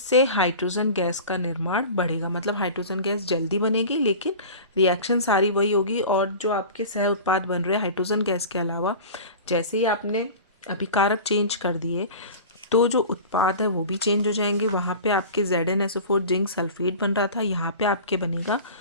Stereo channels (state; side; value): inverted; both; correlation -0.36